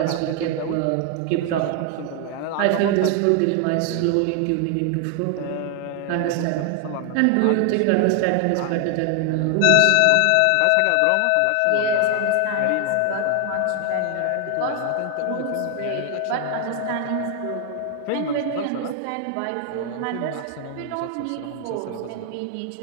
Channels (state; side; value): different; both; correlation 0.00